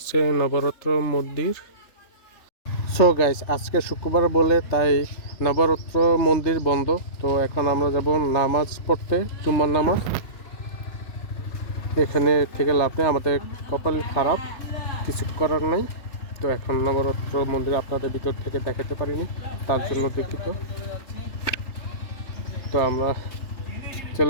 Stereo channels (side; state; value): right; late; 3.3 ms